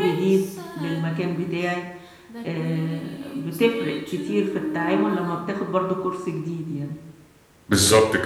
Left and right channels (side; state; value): both; identical; correlation 1.00